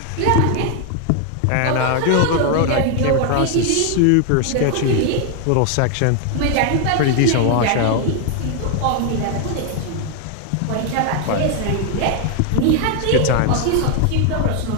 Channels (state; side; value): different; both; correlation 0.00